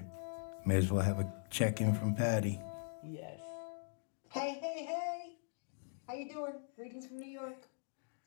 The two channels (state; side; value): silent; right; digital silence